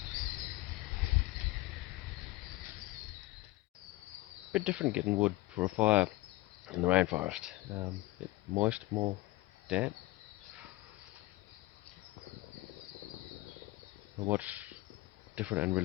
Bit different getting wood for a fire in the rainforest. Bit moist, more damp. But what's different and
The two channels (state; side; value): quieter; right; 19.7 dB